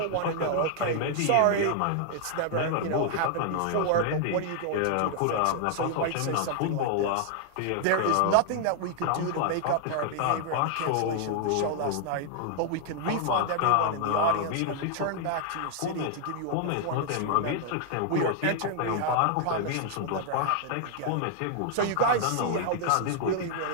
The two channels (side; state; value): both; different; correlation 0.00